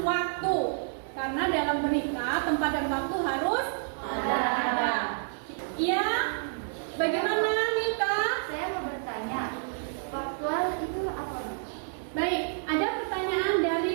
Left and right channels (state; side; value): silent; left; 56 dB below the other